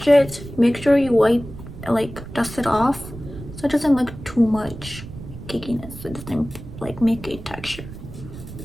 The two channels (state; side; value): noise; right; rumble, 13 dB below the sound